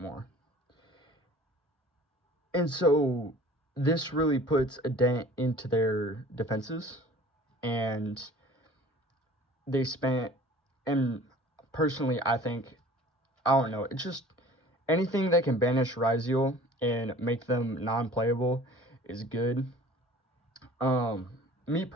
And so this really puts a dent into their defenses, and they spent, and personally I think, I don't know, it's just anything that can banish Ryziel and make them non-playable is good. Me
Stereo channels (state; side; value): normal; both; correlation 0.47